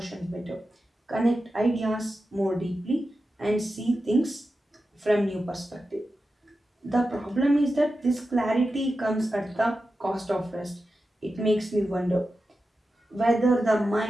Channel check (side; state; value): both; normal; correlation 0.91